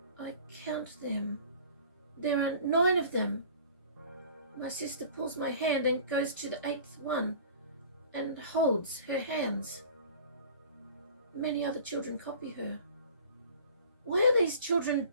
I count them. There are 9 of them. My sister pulls my hand and goes to the 8th one and holds her hands. Many other children copy her. Why are these children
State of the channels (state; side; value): inverted; both; correlation -0.45